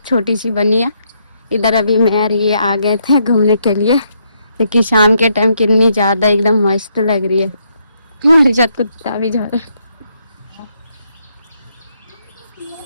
छोटी सी बनी है, इधर अभी मैं और ये आ गए थे घूमने के लिए, क्योंकि शाम के टाइम कितनी ज्यादा एकदम मस्त लग रही है। मेरे साथ कुत्ता भी जा रहा है।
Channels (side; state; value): both; inverted; correlation -0.75